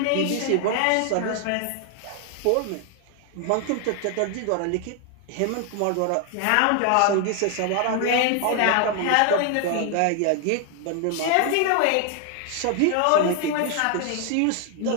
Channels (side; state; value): both; different; correlation 0.00